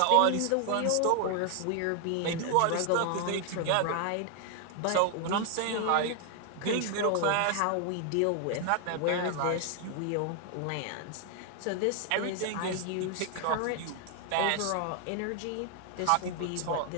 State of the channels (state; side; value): different; both; correlation 0.00